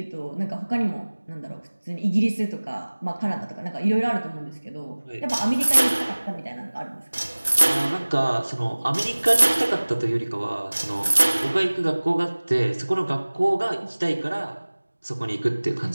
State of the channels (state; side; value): inverted; both; correlation -1.00